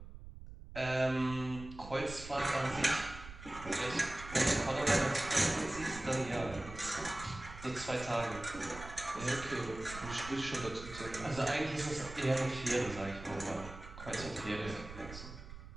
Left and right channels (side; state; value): right; noise; rumble, 13 dB below the sound